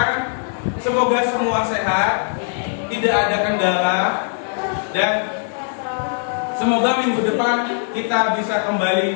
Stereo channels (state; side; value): silent; right; 58 dB below the other